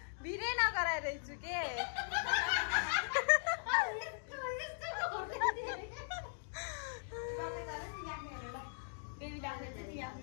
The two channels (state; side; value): silent; right; digital silence